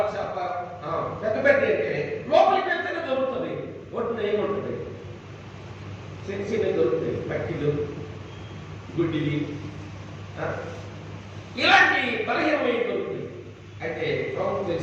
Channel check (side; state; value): both; identical; correlation 1.00